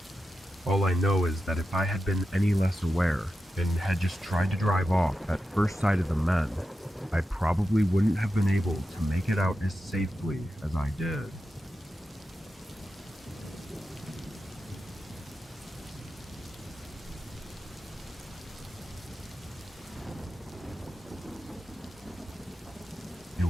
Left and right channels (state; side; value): normal; both; correlation 0.90